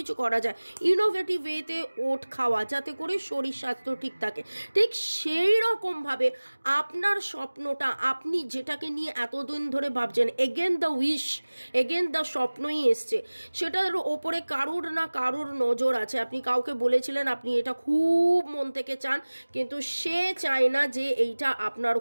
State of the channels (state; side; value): inverted; both; correlation -1.00